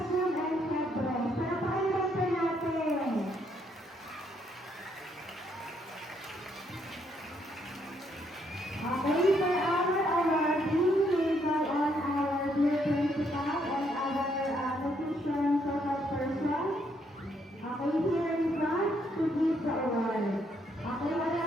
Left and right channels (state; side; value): normal; both; correlation 0.72